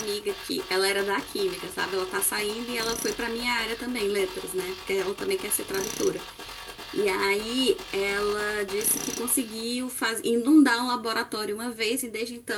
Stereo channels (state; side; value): identical; both; correlation 1.00